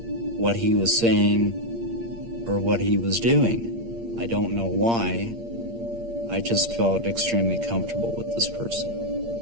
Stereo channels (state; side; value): late; left; 8.6 ms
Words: what he was saying or what he was doing. I don't know why. I just felt extremely comfortable with this person.